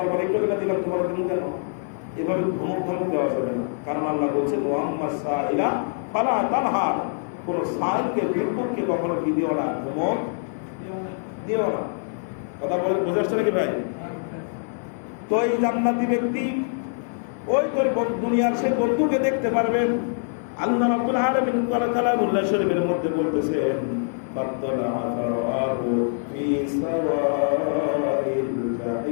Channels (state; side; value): silent; right; 60 dB below the other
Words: একটু কেনা দিলাম, তোমার দিন কেন? এভাবে ধমক দেওয়া যাবে না, কারণ আল্লাহ বলছেন ওয়াম্মা সাইলা ফালা তানহার, কোন সাইলকে, ভিক্ষুককে কখনো কি দিও না, ধমক দিও না। কথা বোঝা যাচ্ছে নাকি ভাই? তো এই জান্নাতি ব্যক্তি ওই তোর দুনিয়ার সেই বন্ধুকে দেখতে পারবেন। আল্লাহ রাব্বুল আলামিন কালামুল্লাহ শরীফের মধ্যে বলতেছেন, ফাত্তালা ফারাহু ফি সাওয়াইল